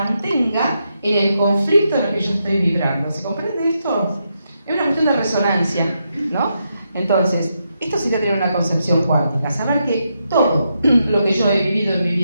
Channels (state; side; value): inverted; both; correlation -0.83